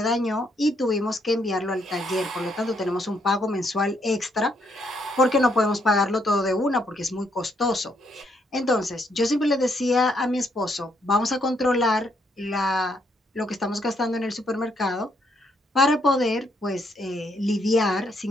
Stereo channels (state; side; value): normal; both; correlation 0.73